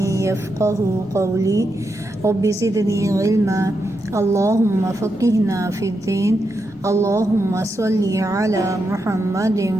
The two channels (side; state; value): both; normal; correlation 0.85